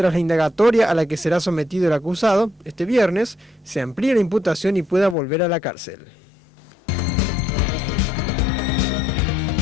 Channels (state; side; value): drops out; right; at 5.2 s